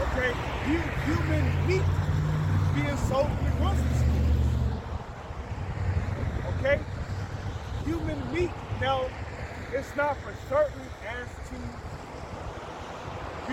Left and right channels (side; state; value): both; identical; correlation 1.00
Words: okay, human meat is being sold in the grocery stores. Okay? Human meat now, it's not for certain as to,